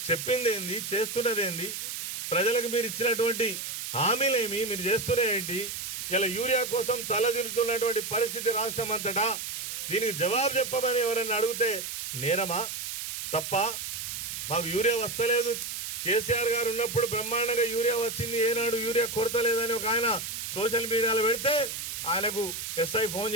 చెప్పిందేంది, చేస్తున్నదేంది, ప్రజలకు మీరు ఇచ్చినటువంటి హామీలేమి, మీరు చేస్తున్నదేంటి? ఇలా యూరియా కోసం తలదిరుతున్నటువంటి పరిస్థితి రాష్ట్రం అంతటా. దీనికి జవాబు చెప్పమని ఎవరైనా అడిగితే నేరమా, తప్ప? మాకు యూరియా వస్తలేదు, కేసీఆర్ గారు ఉన్నప్పుడు బ్రహ్మాండంగా యూరియా వచ్చింది, ఏనాడు యూరియా కొరత లేదని ఒక ఆయన సోషల్ మీడియాలో పెడితే ఆయనకు ఎస్ఐ ఫోన్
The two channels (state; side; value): noise; right; hiss, 5 dB below the sound